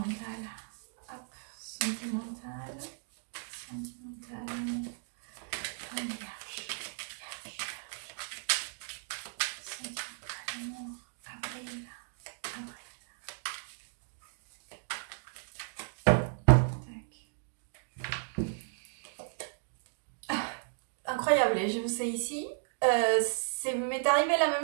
Hop, sentimental. Sentimental. Un vierge. Sentimental, amour. Avril. Incroyable, je vous sais ici. M'est arrivé la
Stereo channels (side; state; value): left; silent; digital silence